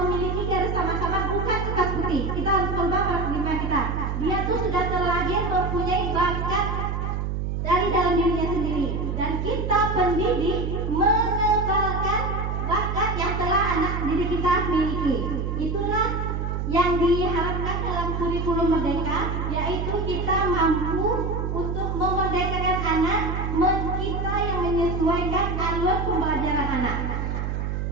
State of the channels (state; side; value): noise; right; hum, 2 dB below the sound